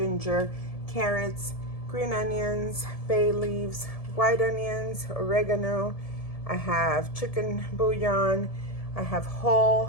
carrots, green onions, bay leaves, white onions, oregano. I have chicken bouillon. I have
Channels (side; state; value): right; late; 1.7 ms